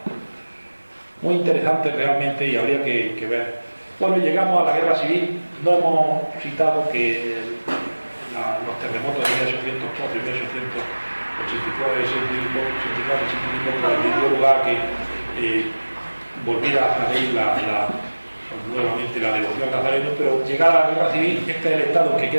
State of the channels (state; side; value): inverted; both; correlation -1.00